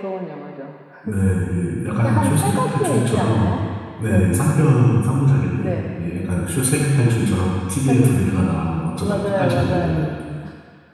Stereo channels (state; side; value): identical; both; correlation 1.00